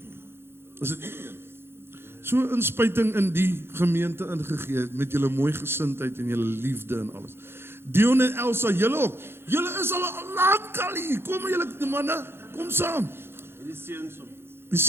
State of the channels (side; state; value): left; late; 0.11 ms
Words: so 'n inspuiting in die gemeente ingegee met julle mooi gesindheid en julle liefde en alles. Dion en Elsa, julle ook. Julle is al lank al hier. Kom julle manne, kom saam. Die